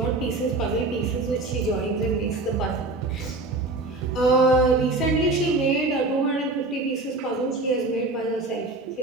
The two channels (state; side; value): quieter; left; 3.1 dB